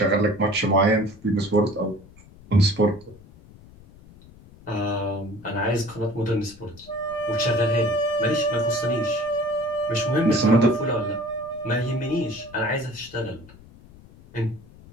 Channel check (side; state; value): left; noise; rumble, 22 dB below the sound